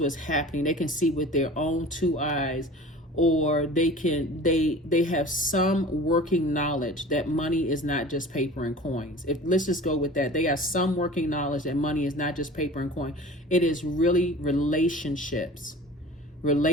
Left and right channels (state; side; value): normal; both; correlation 0.40